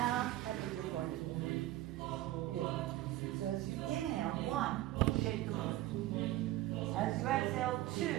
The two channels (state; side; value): quieter; left; 15.6 dB